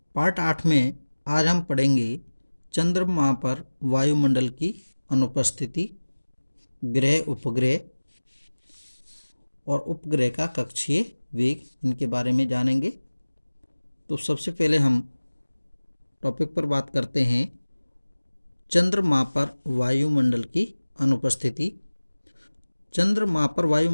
पार्ट 8 में आज हम पढ़ेंगे चंद्रमा पर वायुमंडल की अनुपस्थिति, ग्रह उपग्रह और उपग्रह का कक्षीय वेग, इनके बारे में जानेंगे। तो सबसे पहले हम टॉपिक पर बात करते हैं चंद्रमा पर वायुमंडल की अनुपस्थिति। चंद्रमा पर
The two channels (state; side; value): inverted; both; correlation -1.00